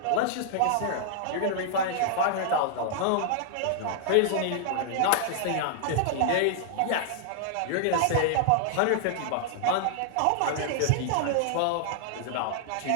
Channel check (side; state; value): both; different; correlation -0.01